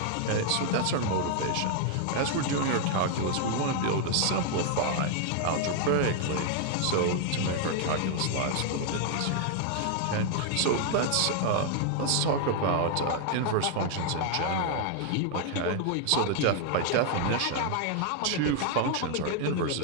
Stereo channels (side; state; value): both; different; correlation 0.00